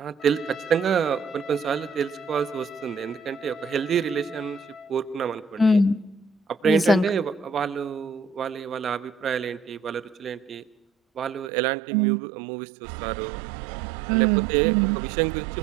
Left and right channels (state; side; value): drops out; left; at 11.5 s